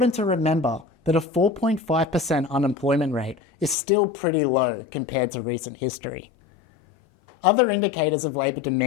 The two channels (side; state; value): right; drops out; at 3.8 s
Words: to remember that a 4.5% unemployment rate is still pretty low compared to recent history. Other indicators of labour